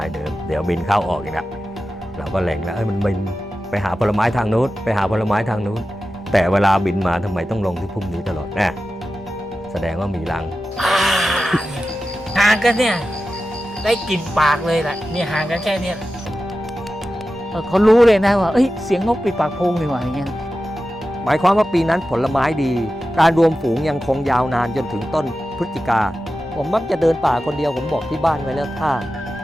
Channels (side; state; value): both; normal; correlation 0.93